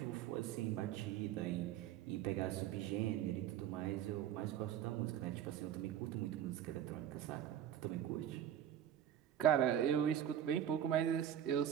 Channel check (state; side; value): quieter; left; 10.5 dB